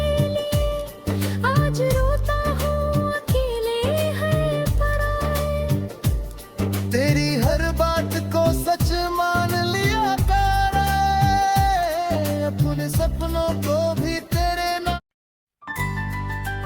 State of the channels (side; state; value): both; identical; correlation 1.00